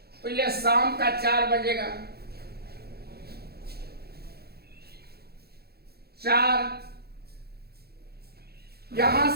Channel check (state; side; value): late; left; 0.46 ms